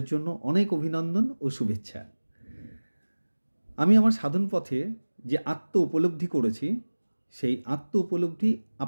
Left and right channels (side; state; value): both; inverted; correlation -1.00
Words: জন্য অনেক অভিনন্দন ও শুভেচ্ছা। আমি আমার সাধন পথে যে আত্ম উপলব্ধি করেছি, সেই আত্ম উপলব্ধি